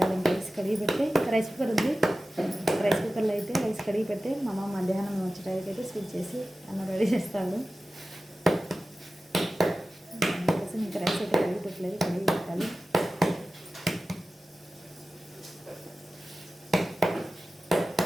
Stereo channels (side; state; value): both; normal; correlation 0.95